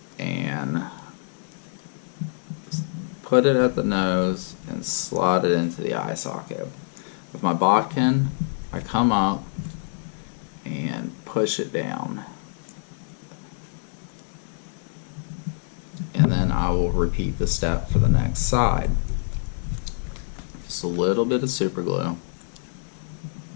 and put it at the nose and slide it into the eye socket. With my bodkin, I come up and push it down. And then I will repeat the step for the next side. Just a little bit of super glue.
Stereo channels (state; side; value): silent; right; digital silence